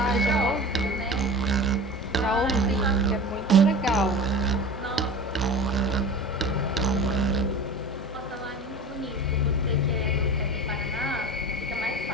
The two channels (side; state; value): both; normal; correlation 0.35